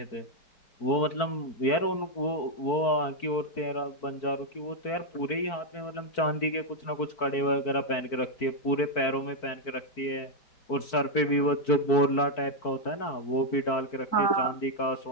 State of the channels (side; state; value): right; late; 4.5 ms